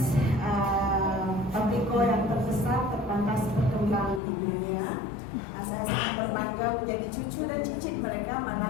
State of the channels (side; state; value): right; drops out; at 4.2 s